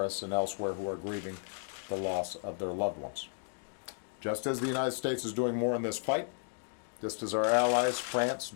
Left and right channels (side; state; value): right; silent; digital silence